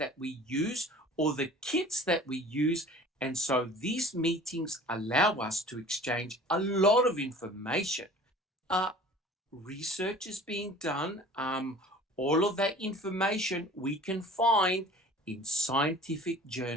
we use or the kits that we use, and so these meetings allow us to exchange a lot of information. Uh, Research is being done. All of that information we can find in scientific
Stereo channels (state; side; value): normal; both; correlation 0.45